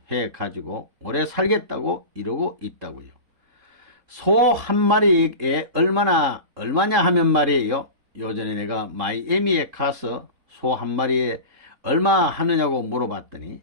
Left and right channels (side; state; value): left; late; 3.7 ms